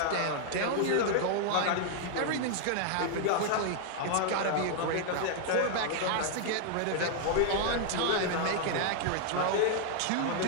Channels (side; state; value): both; different; correlation 0.00